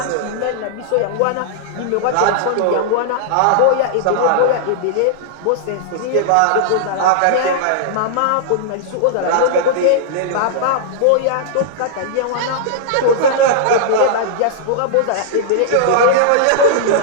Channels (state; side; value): different; both; correlation -0.01